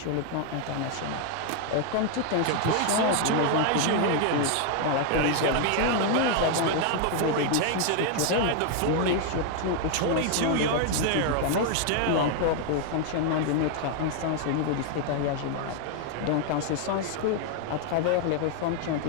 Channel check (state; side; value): different; both; correlation 0.00